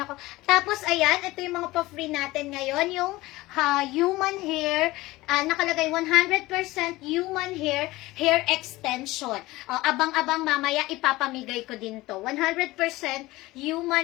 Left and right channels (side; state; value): right; quieter; 19.2 dB